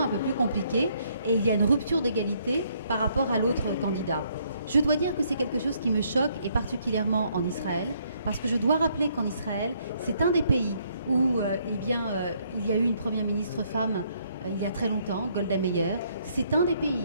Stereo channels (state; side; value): inverted; both; correlation -0.69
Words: un peu plus compliquée et il y a une rupture d'égalité par rapport à l'autre candidat. Je dois dire que c'est quelque chose qui me choque, et particulièrement en Israël, parce que je dois rappeler qu'en Israël, c'est un des pays où il y a eu une première ministre femme il y a très longtemps, Golda Meir. C'est un des